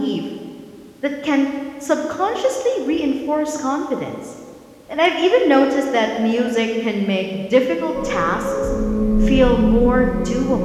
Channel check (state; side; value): identical; both; correlation 1.00